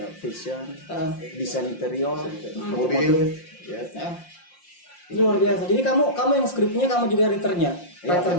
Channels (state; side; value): late; right; 5.7 ms